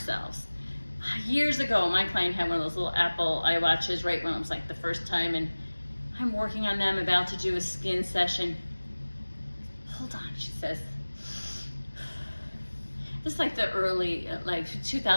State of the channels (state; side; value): inverted; both; correlation -1.00